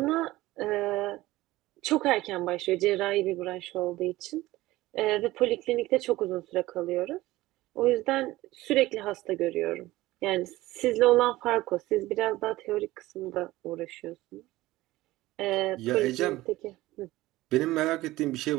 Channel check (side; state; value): left; quieter; 17.8 dB